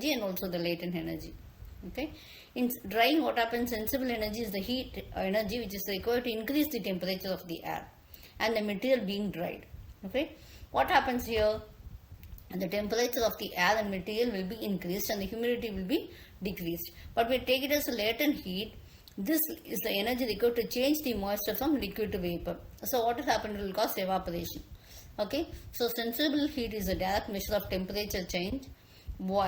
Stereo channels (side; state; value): both; identical; correlation 1.00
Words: and also the latent energy. Okay. In drying, what happens, sensible energy is the heat energy which is required to increase the temperature of the air and the material being dried. Okay, what happens here? The temperature of the air and material will be increased and the humidity will be decreased. But we take it as a latent heat. This is the energy required to change the moisture from liquid to vapor. So what will happen? It will cause evaporation. Okay, so sensible heat is a direct measure of temperature change,